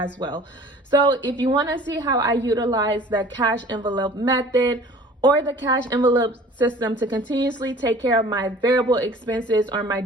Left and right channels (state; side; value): normal; both; correlation 0.47